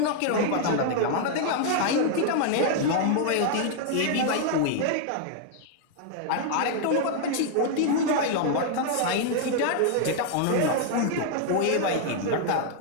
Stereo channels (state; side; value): different; both; correlation 0.00